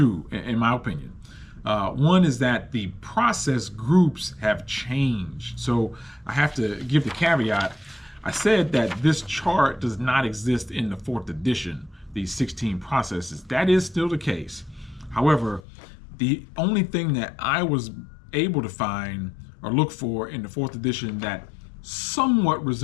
in my opinion. One is that the process groups have changed. So I have to give the caveat. I said that this chart does not exist in the 4th edition, these 16 processes. That is still the case. However, the only thing that I was able to find or look for in the 4th edition that somewhat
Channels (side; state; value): right; drops out; at 15.6 s